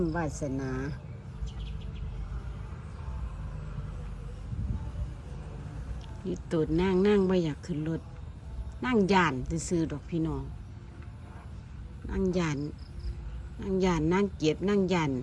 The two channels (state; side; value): identical; both; correlation 1.00